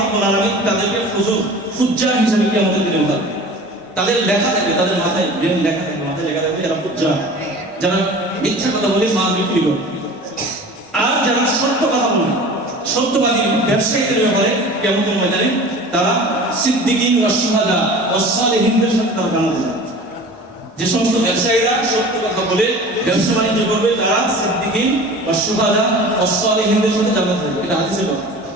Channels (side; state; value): both; normal; correlation 0.39